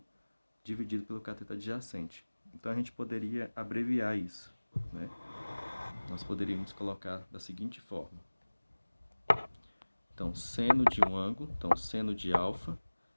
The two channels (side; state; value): both; inverted; correlation -1.00